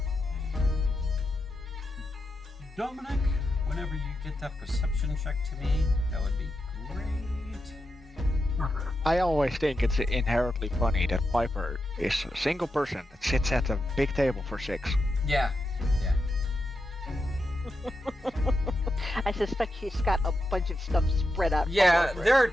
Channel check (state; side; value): normal; both; correlation 0.87